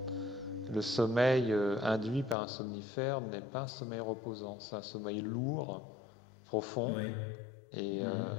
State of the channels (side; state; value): right; drops out; at 2.4 s